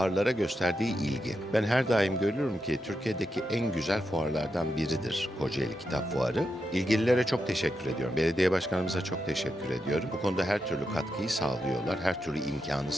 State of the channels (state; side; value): normal; both; correlation 0.86